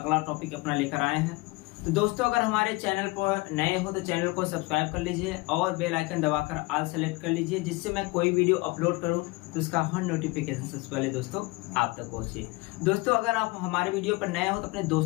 टॉपिक अपना लेकर आए हैं। तो दोस्तों अगर हमारे चैनल पर नए हो तो चैनल को सब्सक्राइब कर लीजिए और बेल आइकन दबाकर ऑल सेलेक्ट कर लीजिए, जिससे मैं कोई वीडियो अपलोड करूं तो उसका हर नोटिफिकेशन सबसे पहले दोस्तों आप तक पहुंचे। दोस्तों अगर आप हमारे वीडियो पर नए हो तो अपने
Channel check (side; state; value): right; quieter; 23.6 dB